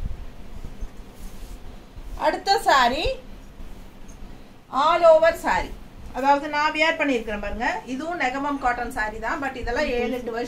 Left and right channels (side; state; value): both; identical; correlation 1.00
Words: அடுத்த சாரி ஆல் ஓவர் சாரி, அதாவது நான் வியர் பண்ணியிருக்கிறேன் பாருங்க. இதுவும் நெகமம் காட்டன் சாரி தான். பட் இதெல்லாம் 7-8